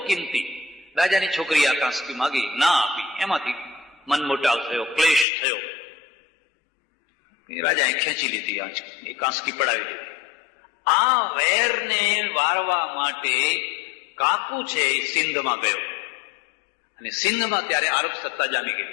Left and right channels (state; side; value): drops out; right; at 5.2 s